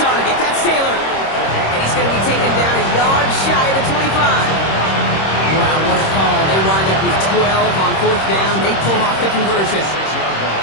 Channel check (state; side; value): late; right; 26 ms